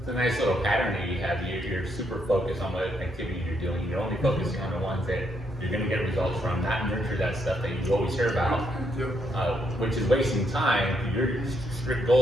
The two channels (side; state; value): both; normal; correlation 0.76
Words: It's a nice little pattern that you have. You're super focused on what activity you're doing. You're only focusing on the ones that you're gonna get results from, not nurture that stuff that you always hear about, Yep. which is wasting time. Your strict